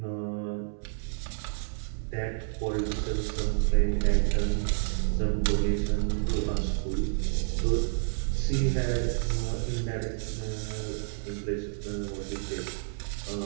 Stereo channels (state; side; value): silent; left; 58 dB below the other